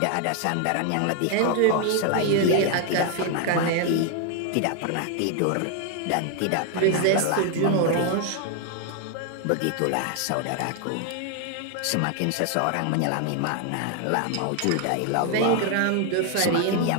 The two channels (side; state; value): both; different; correlation 0.00